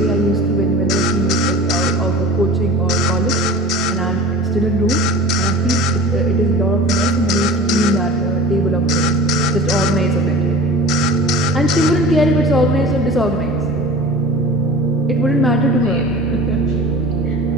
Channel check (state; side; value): normal; both; correlation 0.37